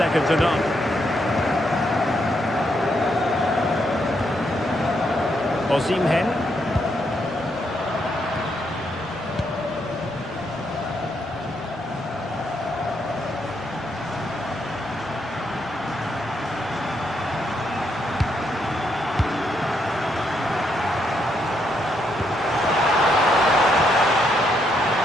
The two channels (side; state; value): both; normal; correlation 0.77